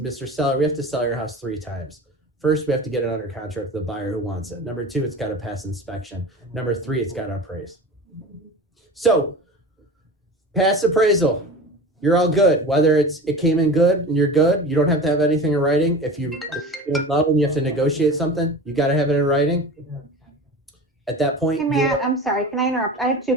Seller, we have to sell your house 3 times. First, we have to get it under contract with the buyer who wants it. Number 2, it's got to pass inspection. Number 3, it's got to appraise. So pass appraisal. You're all good. Whether it came in good and you're good, you don't have to have anything in writing. If you're in love and you have to negotiate something, you got to have it in writing. At that point, Hey, Matt, I'm sorry, can I interrupt? I have 2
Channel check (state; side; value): normal; both; correlation 0.34